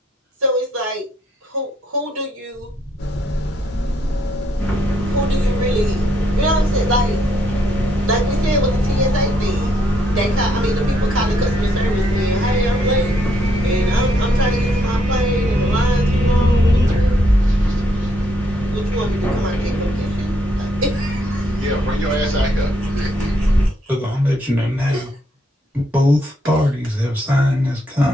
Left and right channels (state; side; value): normal; both; correlation 0.73